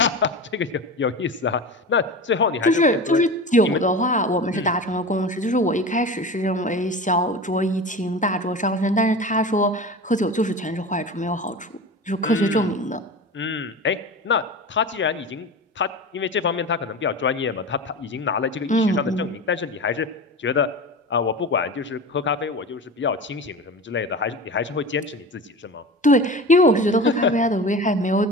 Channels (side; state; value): both; normal; correlation 0.30